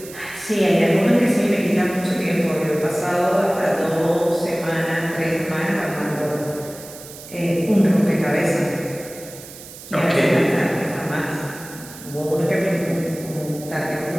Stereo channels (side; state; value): right; noise; hiss, 16 dB below the sound